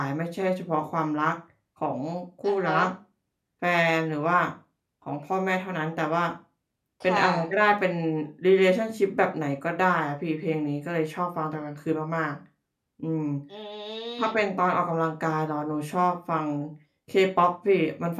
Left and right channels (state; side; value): identical; both; correlation 1.00